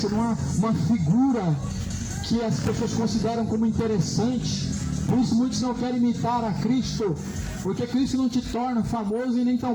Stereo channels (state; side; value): identical; both; correlation 1.00